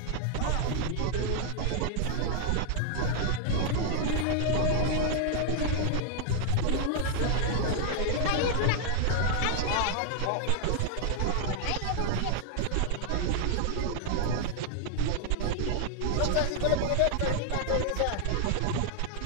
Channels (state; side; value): different; both; correlation 0.00